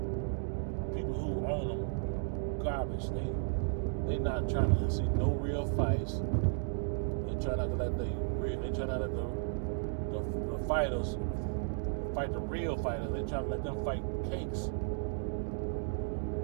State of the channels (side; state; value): left; silent; digital silence